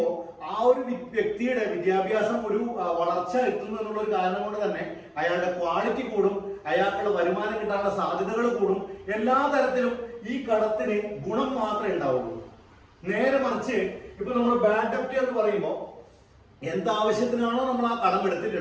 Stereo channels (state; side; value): identical; both; correlation 1.00